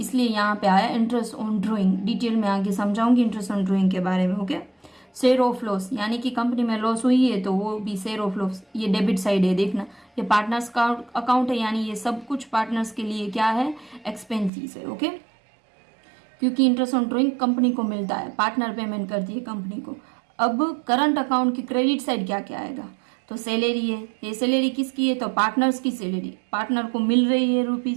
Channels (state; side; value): drops out; left; at 14.5 s